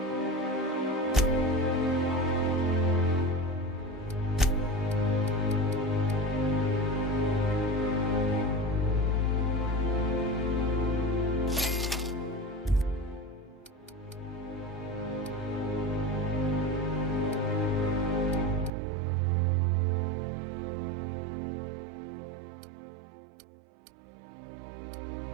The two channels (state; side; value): drops out; left; at 18.7 s